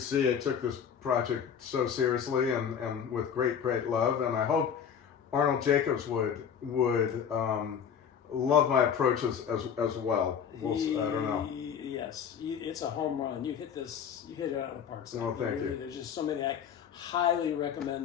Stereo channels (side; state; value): right; quieter; 7.8 dB